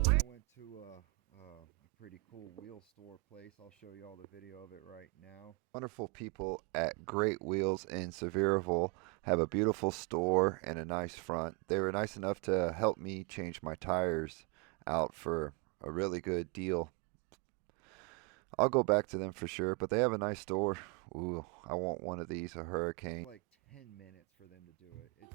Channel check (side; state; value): left; quieter; 29.4 dB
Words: I went to a pretty cool wheel store place. I'll show you all the video of it right now. Wonderful people at Great Wheels in Sevierville have a beautiful store and a nice front. They were nice enough to help me change my tires out for a really good deal. I'll go back to them for sure, but they have a nice store. Ooh, I want one of these, a Hurricane. Like 10 minutes for them to do it. It